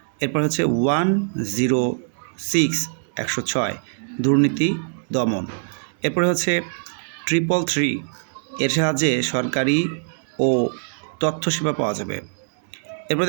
এরপর হচ্ছে 106 106 দুর্নীতি দমন। এরপরে হচ্ছে 333, এর সাহায্যে সরকারি ও তথ্য সেবা পাওয়া যাবে। এরপর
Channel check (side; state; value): left; silent; digital silence